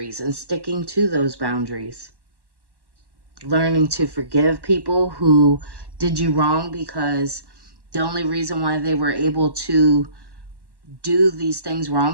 and sticking to those boundaries. Learning to forgive people who did you wrong because the only reason why they were able to do these things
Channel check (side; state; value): left; late; 1.1 ms